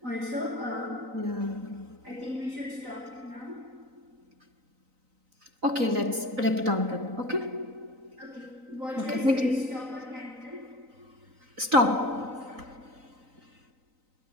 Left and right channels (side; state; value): left; late; 3.9 ms